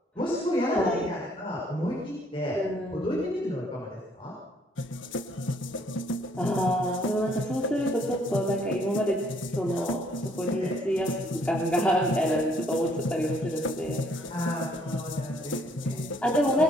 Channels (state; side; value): normal; both; correlation 0.65